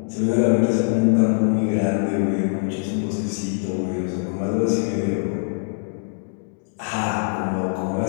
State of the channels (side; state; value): right; silent; digital silence